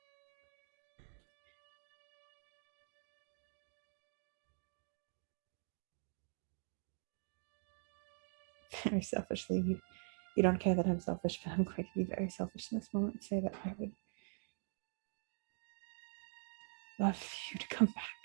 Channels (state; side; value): silent; left; digital silence